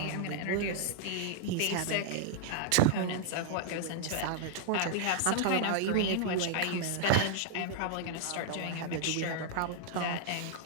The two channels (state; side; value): different; both; correlation -0.01